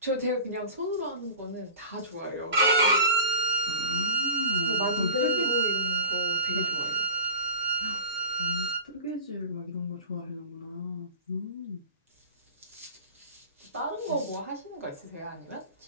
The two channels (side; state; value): both; inverted; correlation -0.35